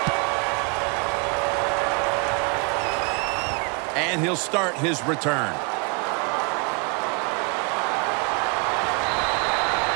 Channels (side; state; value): left; quieter; 32.8 dB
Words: And he'll start his return.